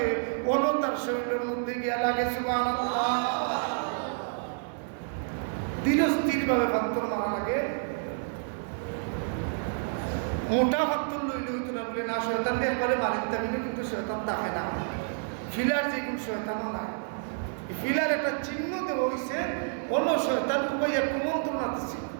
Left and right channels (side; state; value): left; silent; 58 dB below the other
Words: অন্য তার শরীরের মধ্যে গিয়া লাগে। সুবহানাল্লাহ। ধীরস্থির ভাবে পাথর মারা লাগে। মোটা পাথর লইলে হইতো না বলে না, শয়তান একবারে মারিতে পারবে, কিন্তু শয়তান থাকে না। ফিলার যে কোন শয়তানও নাই, ফিলার একটা চিহ্ন দেওয়া হয়েছে, অন্য শয়তান উপাইয়া কুমন্ত্রণা দিচ্ছে।